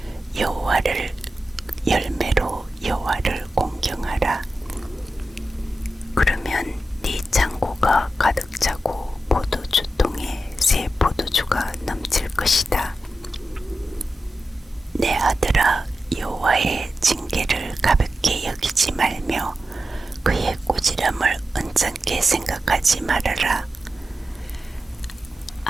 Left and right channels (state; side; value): normal; both; correlation 0.91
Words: 열매로 여호와를 공경하라. 그러면 네 창고가 가득 차고 포도주통에 새 포도주가 넘칠 것이다. 내 아들아 여호와의 징계를 가볍게 여기지 말며 그의 꾸지람을 언짢게 생각하지 말아라.